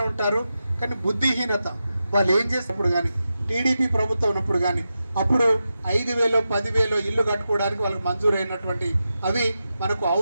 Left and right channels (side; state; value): both; inverted; correlation -0.90